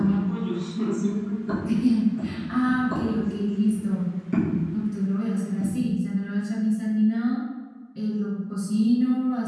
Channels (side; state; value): both; identical; correlation 1.00